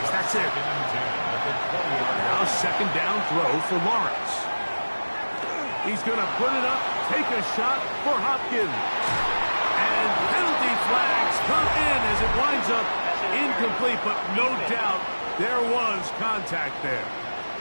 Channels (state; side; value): inverted; both; correlation -1.00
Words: That's it. Now second down throw for Lawrence. He's going to put it up, take a shot for Hopkins. And penalty flags come in as it winds up incomplete, but no doubt there was contact there.